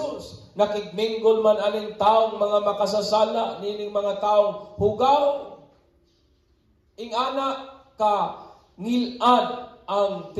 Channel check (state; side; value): identical; both; correlation 1.00